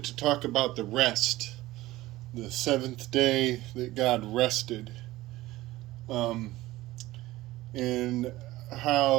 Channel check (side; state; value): left; quieter; 17.5 dB